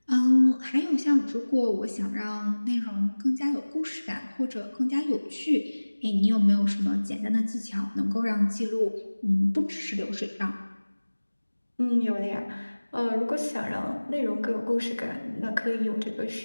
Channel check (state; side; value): inverted; both; correlation -1.00